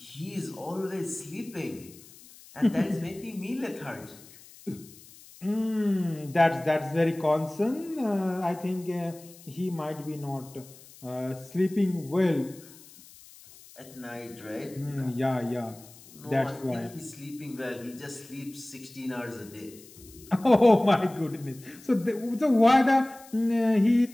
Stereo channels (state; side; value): noise; left; hiss, 22 dB below the sound